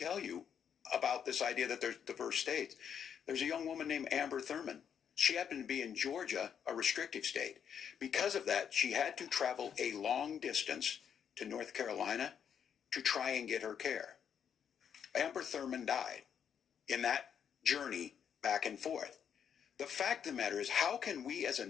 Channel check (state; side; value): quieter; right; 8.1 dB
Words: you about this idea that there's diverse states. There's a young woman named Amber Thurman. She happened to be in Georgia, a restrictive state. Because of that, she had to travel a long distance to North Carolina to try and get her care. Amber Thurman died in that journey back and forth. The fact of the matter is, how can we as a